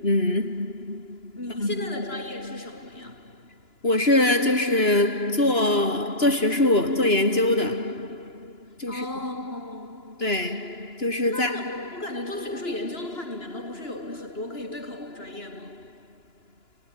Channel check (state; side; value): late; right; 2.9 ms